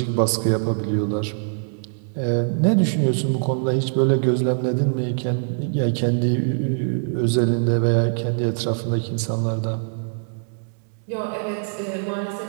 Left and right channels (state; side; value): silent; left; digital silence